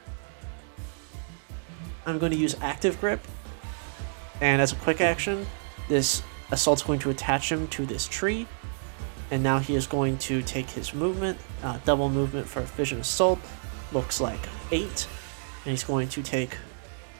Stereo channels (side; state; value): left; silent; digital silence